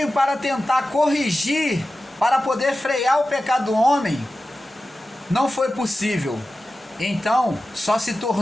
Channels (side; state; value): both; normal; correlation 0.94